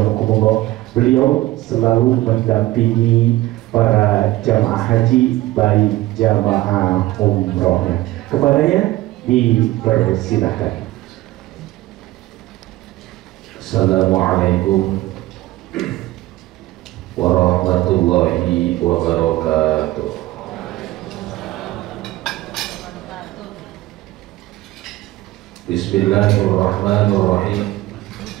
beliau selalu mendampingi para jamaah haji baik jamaah umrohnya. Kepadanya dipersilahkan. Assalamualaikum warahmatullahi wabarakatuh. Bismillahirrahmanirrahim.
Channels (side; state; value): left; quieter; 17.1 dB